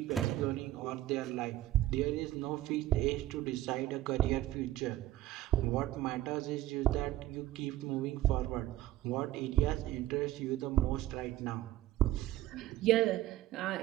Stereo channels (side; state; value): left; quieter; 14.7 dB